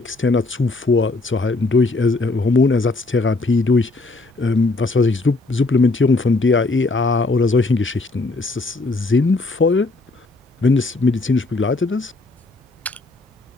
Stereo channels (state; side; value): quieter; right; 3.3 dB